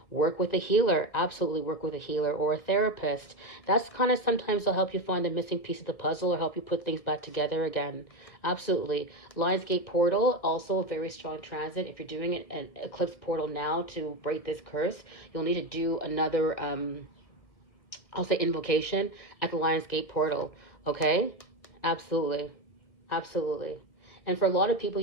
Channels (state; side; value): late; right; 1.6 ms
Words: Work with a healer. Absolutely work with a healer or a therapist. That's kind of, sometimes they'll help you find a missing piece of the puzzle or help you put things back together again. Absolutely. Lionsgate portal, also a very strong transit. If you're doing it an eclipse portal now to break this curse, you'll need to do another I'll say invocation at the Lionsgate portal. Okay? Absolutely. Absolutely. And for a lot of people,